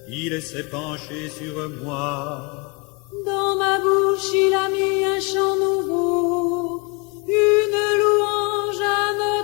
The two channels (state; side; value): quieter; right; 30.6 dB